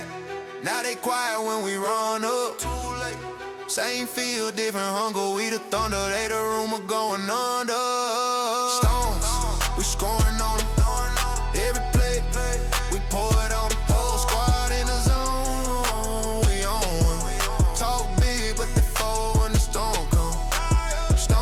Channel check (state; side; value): identical; both; correlation 1.00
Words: Now they quiet when we run up. Same field, different hunger. We the thunder, they the rumor going under. Stones, we scoring on them. Every play, we pour it on them. Whole squad in the zone, we on. Talk big, but they fold when the storm come.